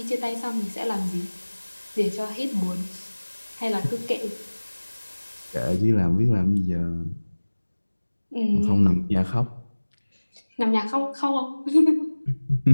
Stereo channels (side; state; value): both; inverted; correlation -1.00